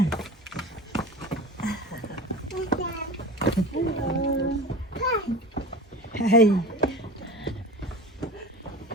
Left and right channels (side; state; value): both; normal; correlation 0.34